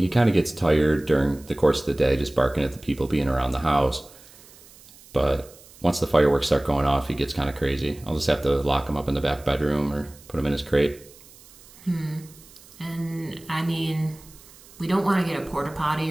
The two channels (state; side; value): noise; right; hiss, 23 dB below the sound